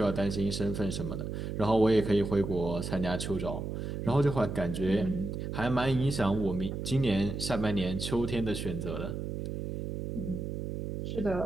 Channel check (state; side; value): noise; right; hum, 4 dB below the sound